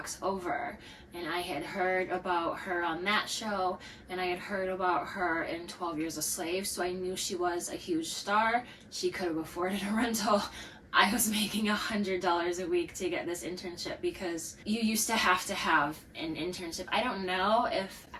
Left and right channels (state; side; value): identical; both; correlation 1.00